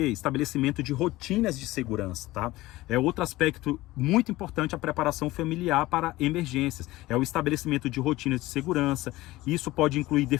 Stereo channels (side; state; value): right; quieter; 18.2 dB